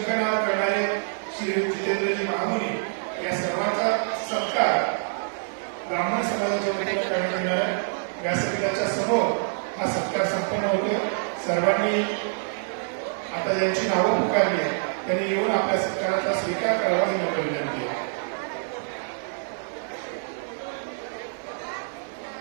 करणारे श्री जितेंद्रजी महामुनी या सर्वांचा सत्कार ब्राह्मण समाजाच्या वतीने करण्यात येणार आहे. व्यासपीठाच्या समोर हा सत्कार संपन्न होतो. सर्वांनी आता ज्यांची नावं पुकारली त्यांनी येऊन आपल्या सत्काराचा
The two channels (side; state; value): left; silent; digital silence